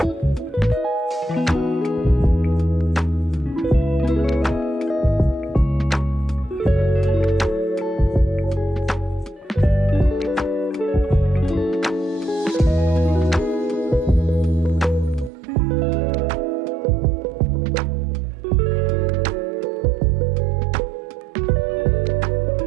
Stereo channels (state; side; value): drops out; left; at 15.3 s